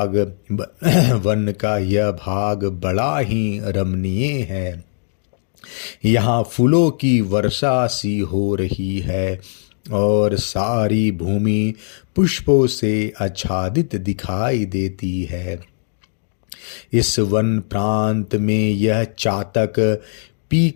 यह भाग बड़ा ही रमणीय है। यहाँ फूलों की वर्षा सी हो रही है और सारी भूमि पुष्पों से आच्छादित दिखाई देती है। इस वन प्रांत में यह चातक पी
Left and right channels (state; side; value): silent; right; digital silence